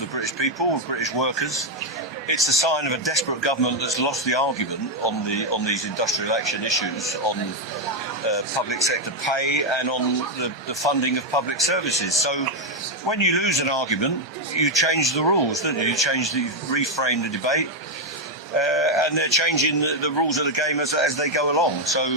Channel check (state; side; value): normal; both; correlation 0.03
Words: the British people, of British workers. It's a sign of a desperate government that's lost the argument on these industrial action issues, on public sector pay and on the funding of public services. So when you lose an argument, you change the rules, don't you? You reframe the debate. And they're changing the rules of the game as they go along. So